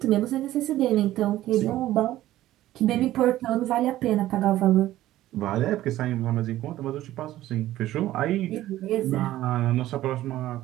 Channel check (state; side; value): quieter; left; 14.6 dB